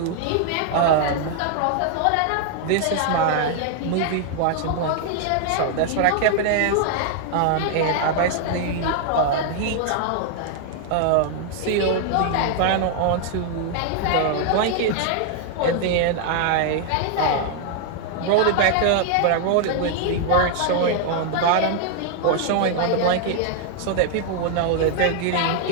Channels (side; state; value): both; different; correlation 0.00